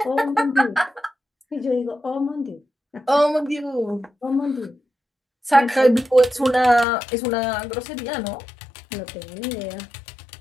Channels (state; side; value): drops out; right; at 6.9 s